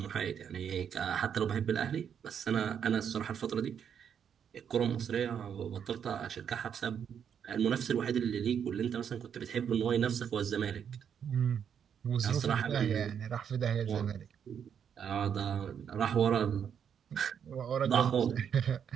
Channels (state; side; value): quieter; left; 8.0 dB